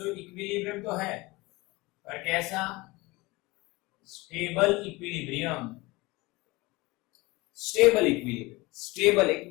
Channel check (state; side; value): quieter; right; 22.4 dB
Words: इक्विलिब्रियम तो है, पर कैसा? Stable equilibrium. Stable equilibrium, stable,